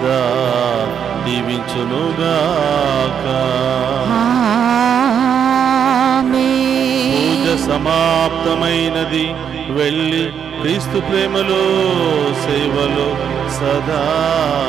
దీవించునుగాక. పూజ సమాప్తమైనది. వెళ్ళి క్రీస్తు ప్రేమలో సేవలో సదా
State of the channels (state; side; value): quieter; left; 8.0 dB